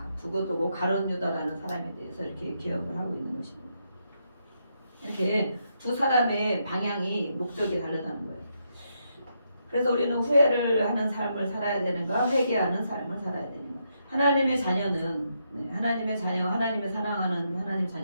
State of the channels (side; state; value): both; inverted; correlation -0.80